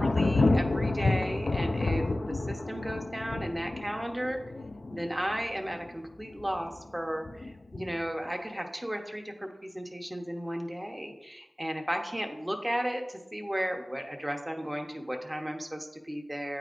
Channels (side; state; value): both; normal; correlation 0.97